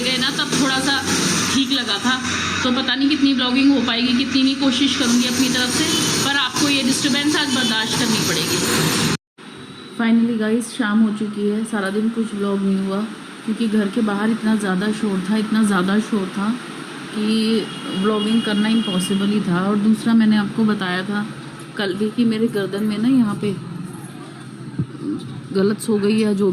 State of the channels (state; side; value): identical; both; correlation 1.00